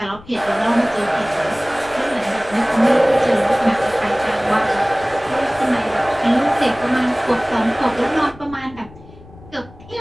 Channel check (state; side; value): noise; left; rumble, 21 dB below the sound